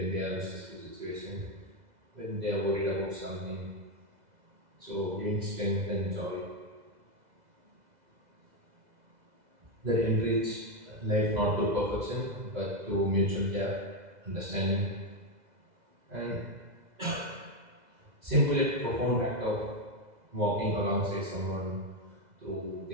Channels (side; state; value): left; late; 2.0 ms